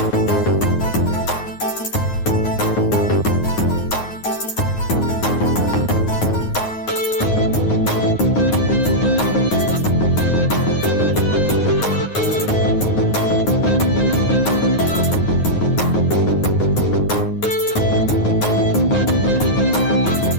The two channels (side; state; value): right; late; 9.5 ms